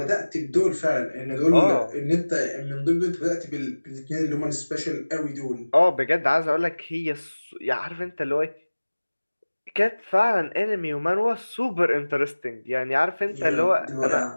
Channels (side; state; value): both; inverted; correlation -1.00